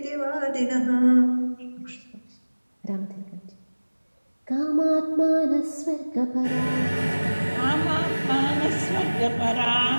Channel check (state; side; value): inverted; both; correlation -1.00